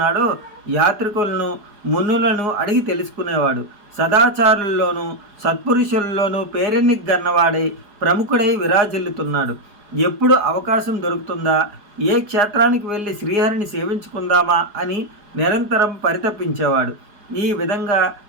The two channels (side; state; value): left; late; 4.9 ms